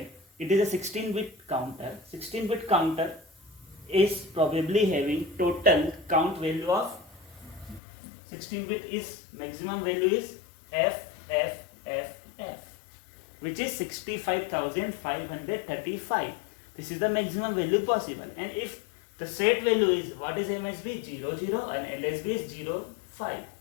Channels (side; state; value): right; drops out; at 7.8 s